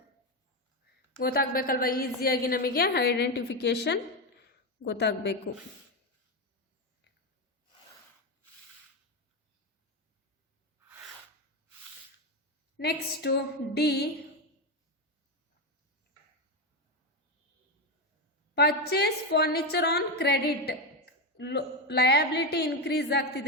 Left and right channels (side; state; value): both; normal; correlation 0.11